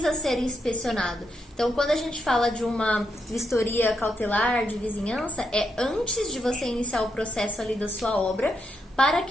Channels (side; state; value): both; normal; correlation 0.82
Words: ser inspecionado. Então, quando a gente fala de uma vistoria cautelar de vizinhança, é antes de você iniciar o processo ali da sua obra, para